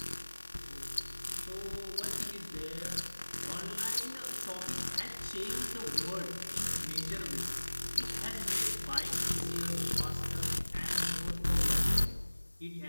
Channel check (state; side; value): inverted; both; correlation -1.00